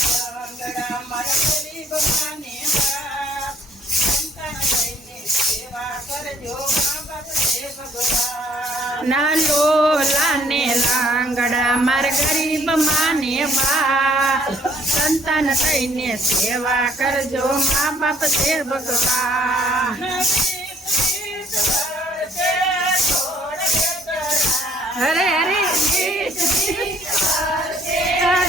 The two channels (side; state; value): both; normal; correlation 0.62